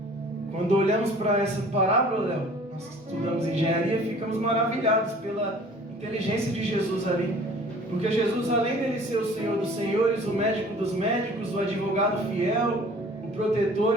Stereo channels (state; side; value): normal; both; correlation 0.49